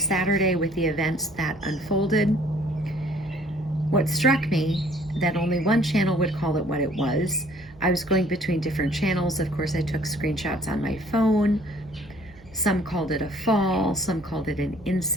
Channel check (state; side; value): noise; right; hum, 24 dB below the sound